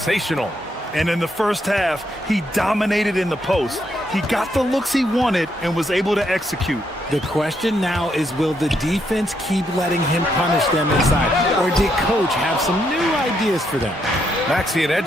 And in the first half, he dominated in the post. He got the looks he wanted and was able to execute. The question now is, will the defense keep letting him punish them inside? Or did Coach have some new ideas for them? Maxey and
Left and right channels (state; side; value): normal; both; correlation 0.77